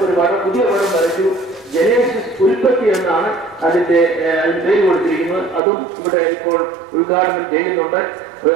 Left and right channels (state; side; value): drops out; left; at 5.6 s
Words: ഒരു പുതിയ പടം വരച്ചു. ജനേസിസ് ഉൽപ്പത്തി എന്നാണ് അതിന് പേര് കൊടുത്തിരിക്കുന്നത്. അതും ഇവിടെ ഇപ്പോൾ ഉദ്ഘാടനം ചെയ്യുന്നുണ്ട്.